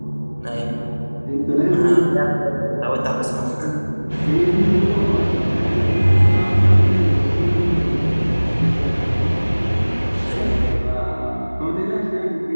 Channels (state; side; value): inverted; both; correlation -1.00